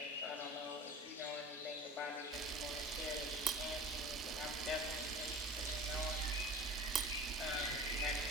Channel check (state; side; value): normal; both; correlation 0.37